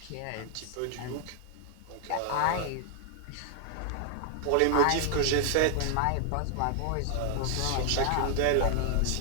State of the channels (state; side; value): different; both; correlation 0.00